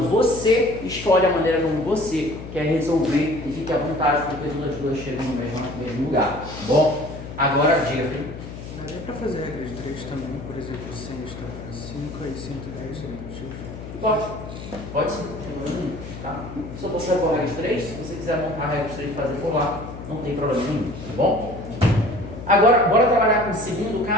você escolhe a maneira como você quer resolver e fique à vontade, porque todas as duas chegam no mesmo lugar, tá bom? Agora, diga, filho. Daria para fazer a regra de 3 também, por exemplo, 100 está para 5 e 110 seria para X? Pode sim, tá? Só você vai por regra de 3, se você quiser montar a regra de 3 e fazer por lá, não tem problema nenhum, tá bom? Agora, bora trabalhar com o segundo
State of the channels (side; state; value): left; noise; hum, 11 dB below the sound